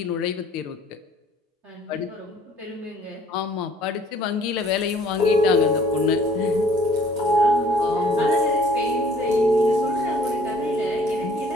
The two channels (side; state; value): both; normal; correlation 0.57